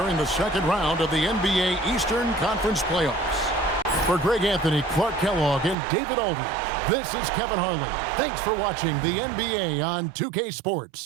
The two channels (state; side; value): drops out; left; at 5.8 s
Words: the second round of the NBA Eastern Conference Playoffs. For Greg Anthony, Clark Kellogg, and David Aldridge, this is Kevin Harlan. Thanks for watching the NBA on 2K